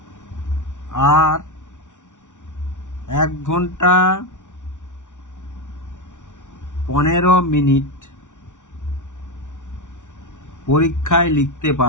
আর 1 ঘন্টা 15 মিনিট পরীক্ষায় লিখতে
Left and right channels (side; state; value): right; late; 0.87 ms